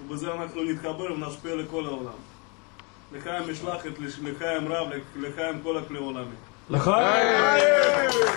ובזה אנחנו נתחבר ונשפיע לכל העולם. לחיים משלחת, לחיים רב, לחיים כל הכלי העולמי. לחיים!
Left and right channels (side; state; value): right; quieter; 32.2 dB